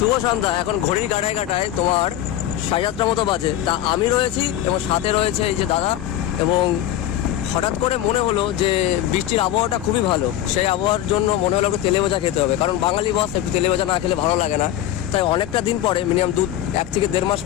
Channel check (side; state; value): right; quieter; 12.6 dB